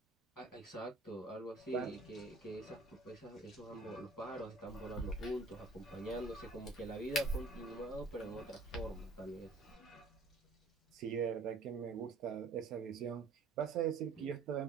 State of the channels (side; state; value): left; quieter; 3.5 dB